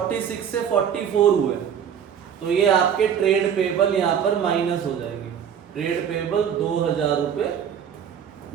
से 44 हुए, तो ये आपके ट्रेड पेबल यहाँ पर माइनस हो जाएंगे। ट्रेड पेबल 2,000 रुपये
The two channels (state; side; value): quieter; left; 8.3 dB